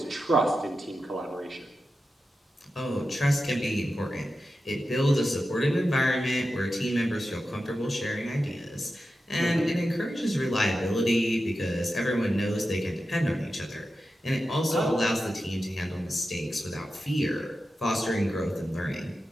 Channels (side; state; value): both; normal; correlation 0.91